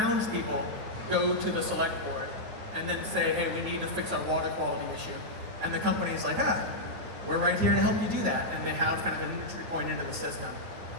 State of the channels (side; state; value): left; late; 10 ms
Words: go to the select board and then say, hey, we need to fix our water quality issue. And the company's like, we're right here to help you do that. And they have kind of an entry point into the system.